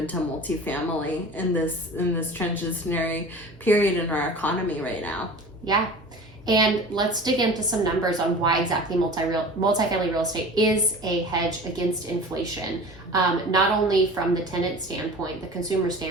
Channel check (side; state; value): both; normal; correlation 0.38